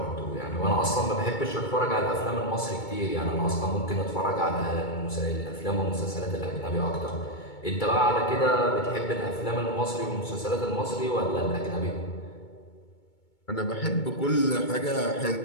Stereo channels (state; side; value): late; right; 2.2 ms